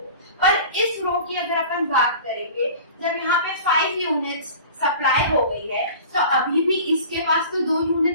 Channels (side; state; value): both; inverted; correlation -0.40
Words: पर इस रो की अगर अपन बात करेंगे, जब यहाँ पे 5 यूनिट्स सप्लाई हो गई है तो अभी भी इसके पास तो 2